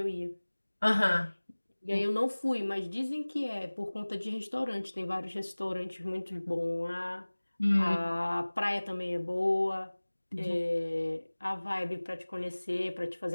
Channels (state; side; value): inverted; both; correlation -1.00